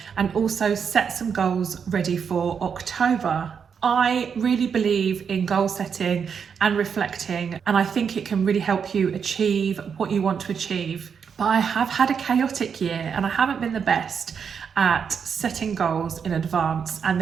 and also set some goals ready for October. I really believe in goal setting and reflecting, and I think it can really help you achieve what you want to achieve. But I have had a chaotic year and I haven't been the best at setting goals in advance and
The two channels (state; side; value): quieter; left; 6.7 dB